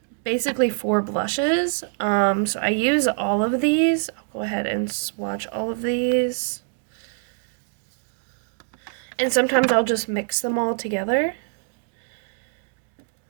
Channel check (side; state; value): left; silent; 62 dB below the other